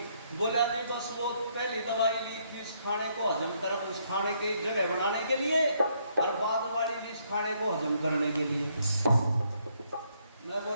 बोला जी बस वो पहली दवाई ली थी इस खाने को हजम कर, उस खाने की जगह बनाने के लिए, और बाद वाली ली इस खाने को हजम करने के लिए। मैं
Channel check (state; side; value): inverted; both; correlation -0.72